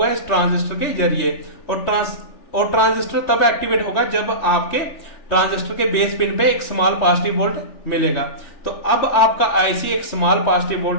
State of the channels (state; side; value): late; right; 3.4 ms